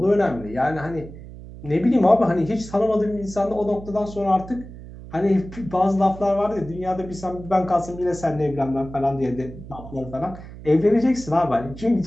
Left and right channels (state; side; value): noise; right; hum, 15 dB below the sound